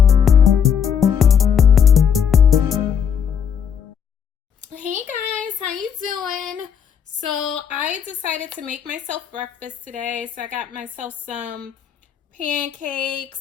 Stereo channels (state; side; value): quieter; right; 7.7 dB